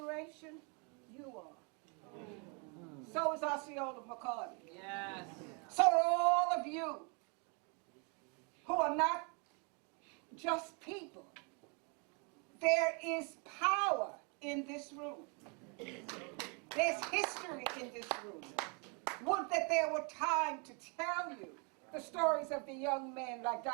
You are. So is Osceola McCarty. Yes. So are all of you who are not just people. There is power in this room. There's history in this room. Would that there were time to tell you the stories of the young men like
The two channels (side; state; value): left; quieter; 35.1 dB